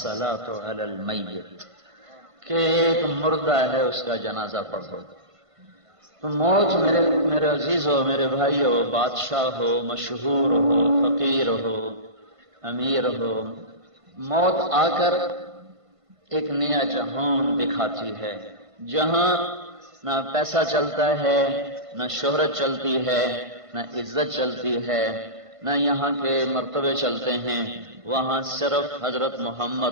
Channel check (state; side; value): late; left; 1.5 ms